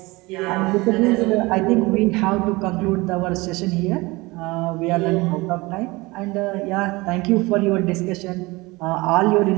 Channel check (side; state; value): left; quieter; 22.7 dB